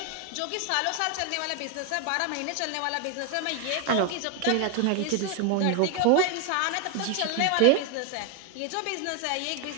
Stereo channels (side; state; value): both; different; correlation 0.01